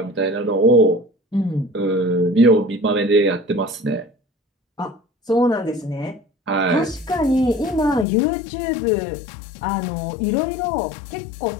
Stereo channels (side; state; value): right; drops out; at 8.1 s